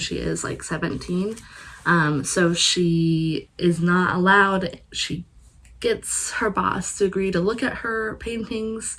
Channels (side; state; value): both; identical; correlation 1.00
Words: she is like 17. So she is not allowed. She gets her boss to agree to look at her paintings,